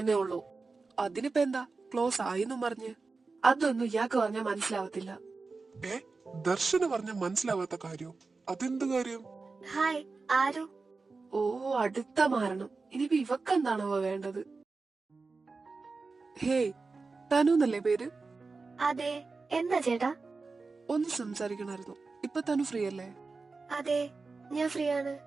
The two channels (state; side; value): quieter; left; 4.1 dB